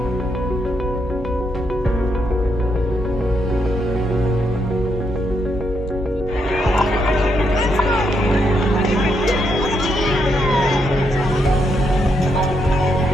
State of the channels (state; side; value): normal; both; correlation 0.78